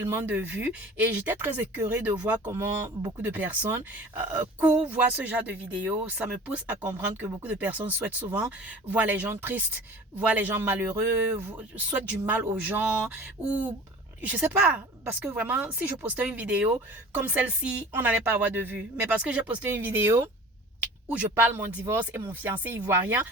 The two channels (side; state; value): both; normal; correlation 0.42